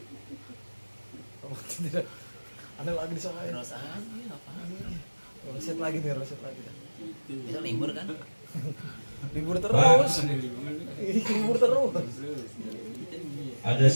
Ada lagi di sana. Terus aja apaan? Roset lagi. Bisa libur kan? Libur terus. Libur terus. Ada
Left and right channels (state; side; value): inverted; both; correlation -1.00